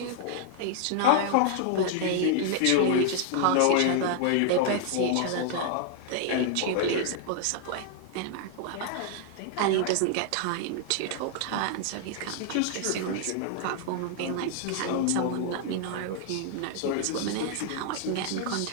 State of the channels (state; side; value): different; both; correlation -0.01